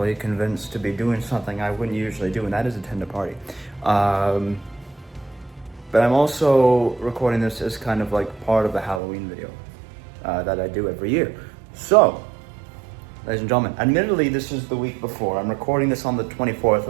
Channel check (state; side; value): drops out; left; at 9.0 s